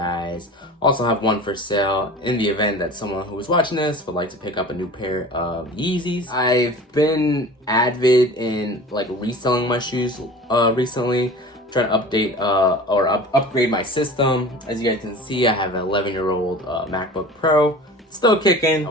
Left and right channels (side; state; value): both; normal; correlation 0.39